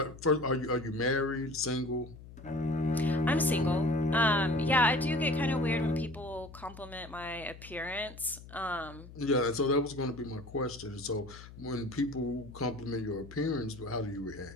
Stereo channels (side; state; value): left; noise; hum, 17 dB below the sound